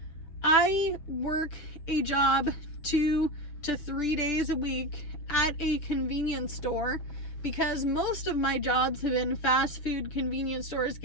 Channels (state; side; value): late; right; 6.8 ms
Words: I work a job 2 to 3 days a week at a convenience store because most of my jobs have been fast food, convenience stores,